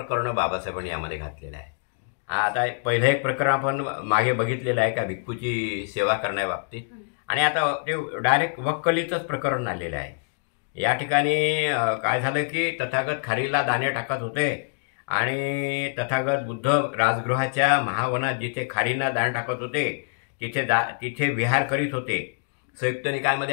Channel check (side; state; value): right; silent; 62 dB below the other